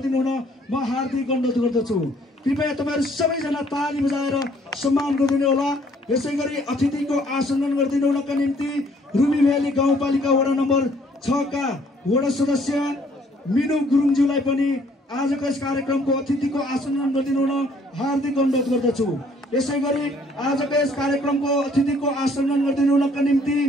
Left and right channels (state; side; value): normal; both; correlation 0.62